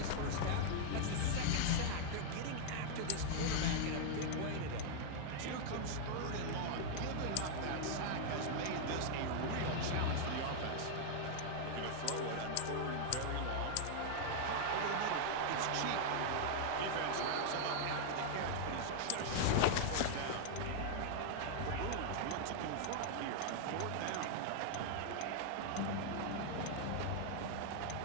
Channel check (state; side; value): different; both; correlation -0.01